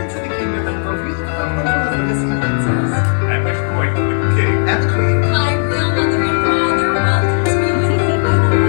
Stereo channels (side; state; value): right; silent; digital silence